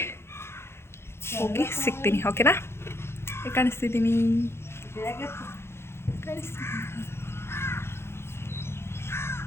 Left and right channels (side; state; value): right; late; 0.12 ms